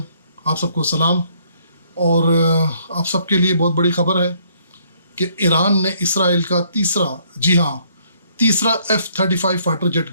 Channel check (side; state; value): both; inverted; correlation -0.66